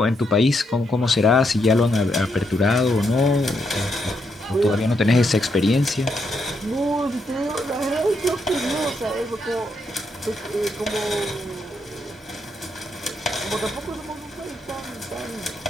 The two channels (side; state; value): both; normal; correlation 0.79